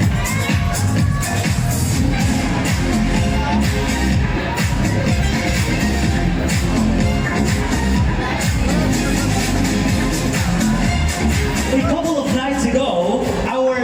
A couple of nights ago, our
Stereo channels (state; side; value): identical; both; correlation 1.00